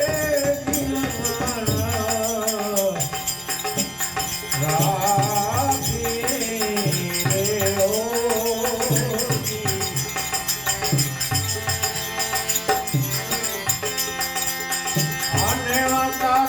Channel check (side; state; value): both; identical; correlation 1.00